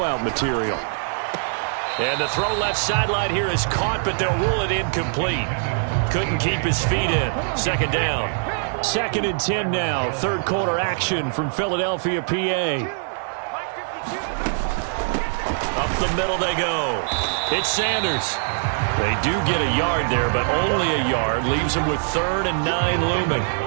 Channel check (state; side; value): silent; left; 64 dB below the other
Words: material. And the throw left sideline here is caught, but they'll rule it incomplete. Couldn't keep his feet in. 2nd down. 2nd and 10 now. 3rd quarter action from Philadelphia, PA. Up the middle they go. It's Sanders. They do get a yard there, but only a yard. Leaves them with 3rd and 9 looming.